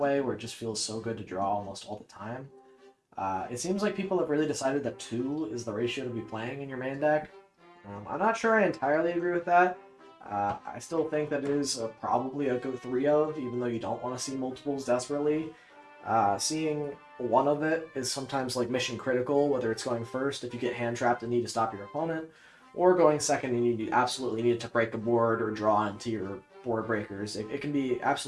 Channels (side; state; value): both; identical; correlation 1.00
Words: where it just feels so good to draw almost all the time. It seems like people have really decided that 2 is the ratio to be playing in your main deck. I'm not sure I entirely agree with that. I still think that it is probably a go 3 of, even though you don't want to see multiples desperately. Seeing one of it is sometimes like mission critical, whether it's going first if you get hand trapped and need to stop your opponent, or going second and you absolutely need to break a board or draw into your board breakers. It can be